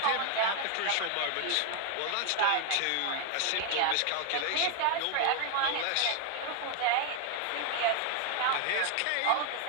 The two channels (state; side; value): different; both; correlation 0.00